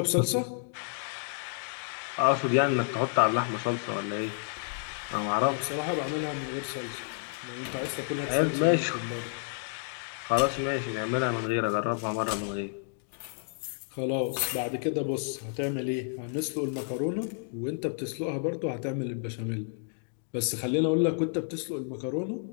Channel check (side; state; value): right; silent; digital silence